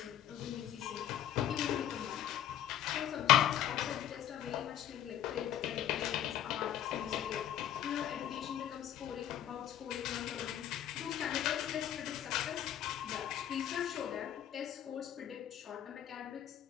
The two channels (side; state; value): right; quieter; 11.2 dB